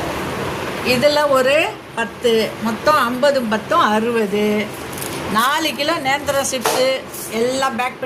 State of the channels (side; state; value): both; identical; correlation 1.00